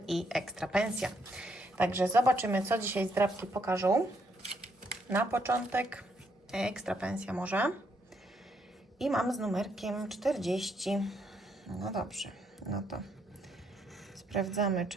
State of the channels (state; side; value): normal; both; correlation 0.73